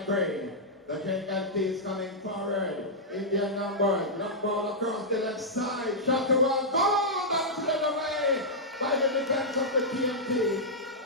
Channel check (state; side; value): normal; both; correlation -0.09